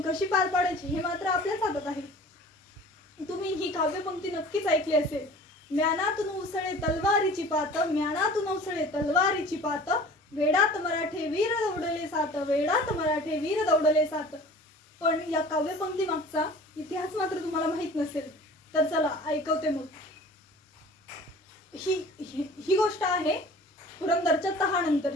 पार पाडायची हे मात्र आपल्याच हातात आहे. तुम्ही ही काव्यपंक्ती नक्कीच ऐकली असेल. म्यानातून उसळे तलवारीची पात, म्यानातून उसळे तलवारीची पात, वेडात मराठे वीर दौडले सात, वेडात मराठे वीर दौडले सात. पण या काव्यपंक्ती मागचा इतिहास मात्र तुम्हाला माहित नसेल. तर चला ऐकवते मग. ही गोष्ट आहे पुरंदरच्या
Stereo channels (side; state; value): both; normal; correlation 0.44